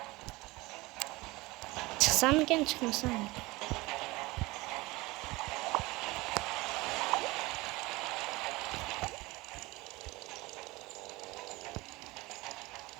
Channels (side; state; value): left; quieter; 21.8 dB